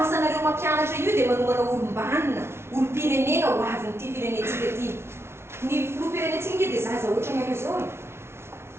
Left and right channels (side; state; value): left; late; 0.12 ms